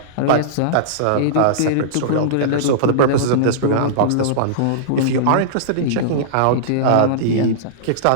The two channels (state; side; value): different; both; correlation -0.03